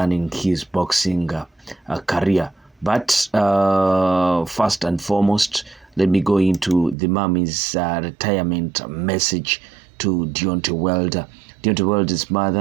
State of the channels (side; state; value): left; drops out; at 7.0 s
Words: his boxing career. But first and foremost, let me go into the mommy's retirement message to Deontay Wilder. Deontay Wilder's